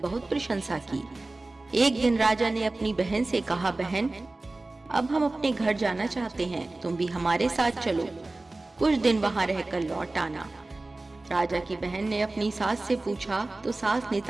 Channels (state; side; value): quieter; left; 3.0 dB